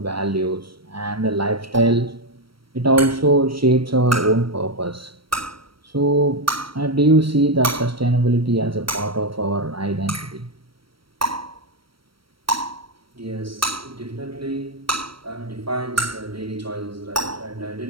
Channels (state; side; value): late; left; 0.75 ms